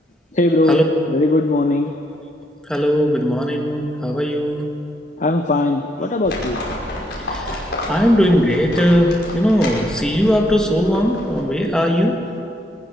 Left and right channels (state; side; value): normal; both; correlation 0.75